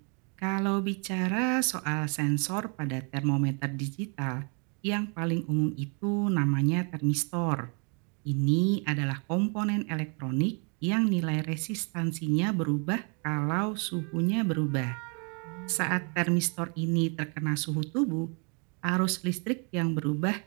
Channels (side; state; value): left; quieter; 36.3 dB